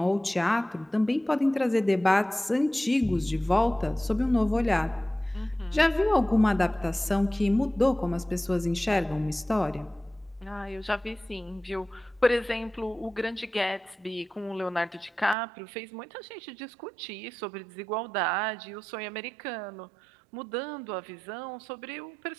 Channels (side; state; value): left; drops out; at 15.4 s